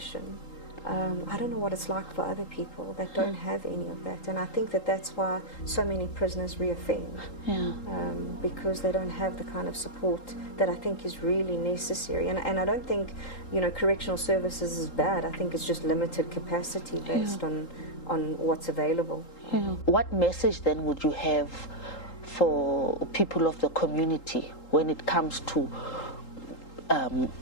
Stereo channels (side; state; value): right; late; 3.8 ms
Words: I don't know what it's like for other people that don't have any of that, and I think that that's why so many prisoners reoffend, because they don't have the kind of support that I think is really necessary. And I don't think, you know, correctional services is bad. I think it's just limited capacity based on what's available. What message then would you have for people of the community when it comes to